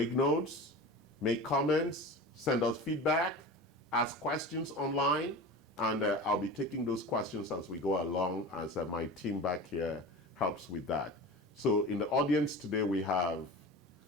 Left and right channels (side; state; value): both; normal; correlation 0.32